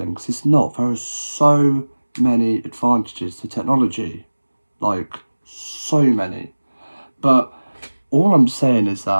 because it's not. There are so many advantages to technology, like so many. But all I'm saying is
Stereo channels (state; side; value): inverted; both; correlation -1.00